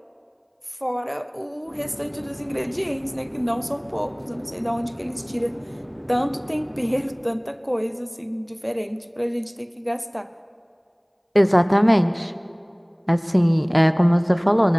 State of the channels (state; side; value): identical; both; correlation 1.00